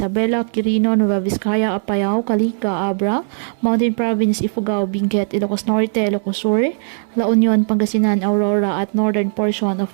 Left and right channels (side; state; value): left; silent; digital silence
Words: Quirino, Nueva Vizcaya, Apayao, Calica, Abra, Mountain Province, Ifugao, Benguet, Ilocos Norte, Ilocos Sur, La Union, Pangasinan, Aurora at northern portion of